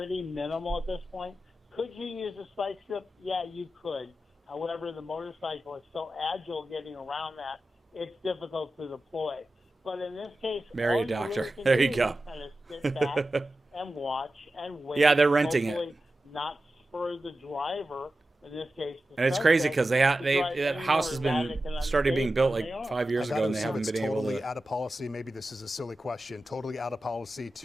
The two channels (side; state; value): both; normal; correlation 0.93